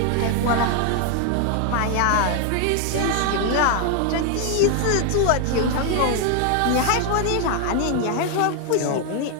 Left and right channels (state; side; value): different; both; correlation 0.01